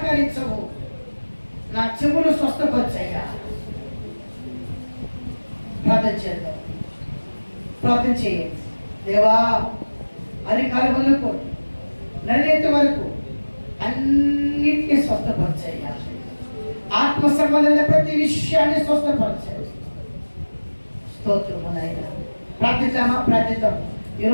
నా చెవులు స్వస్థపరచయ్యా. ప్రార్థన చేద్దాం. ప్రార్థన చేయండి. దేవా, అరికాల వరకు నడినేటి వరకు అన్నిటినీ స్వస్థపరచయ్యా. ఆత్మ సంబంధమైన ప్రతి విషయాన్ని స్వస్థపరచాయి. స్తోత్రము నాయనా. ప్రార్థిద్దామా? ప్రార్థిద్దాం.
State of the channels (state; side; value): inverted; both; correlation -1.00